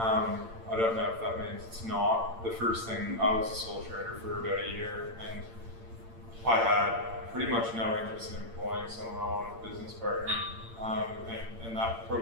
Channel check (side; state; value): left; late; 8.8 ms